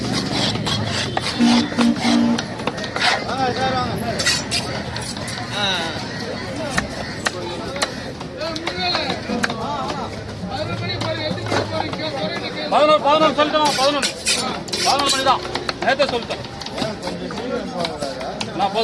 பதினொன்று சொல்லிட்டோம். 11 மணி தான் நேரத்தை சொல்லிட்டேன். நான்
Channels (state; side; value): identical; both; correlation 1.00